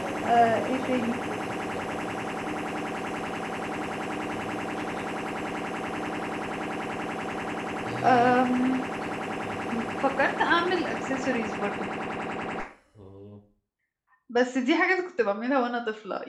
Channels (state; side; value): identical; both; correlation 1.00